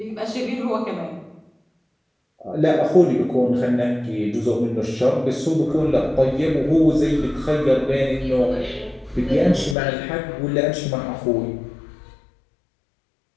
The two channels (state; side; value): drops out; right; at 9.8 s